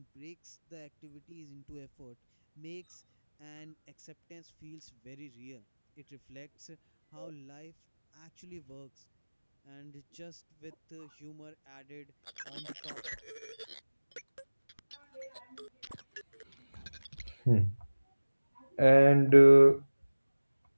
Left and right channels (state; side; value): inverted; both; correlation -1.00